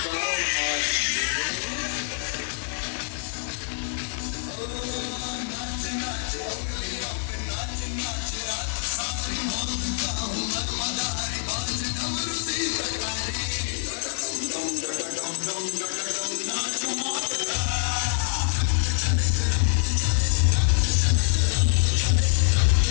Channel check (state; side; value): silent; right; 61 dB below the other